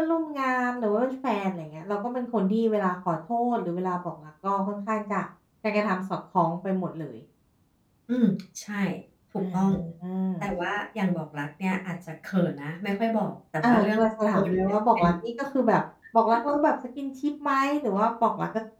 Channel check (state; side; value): identical; both; correlation 1.00